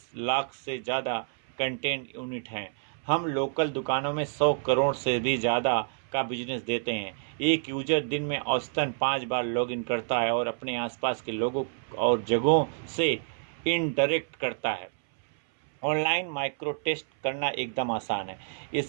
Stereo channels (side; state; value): left; silent; 59 dB below the other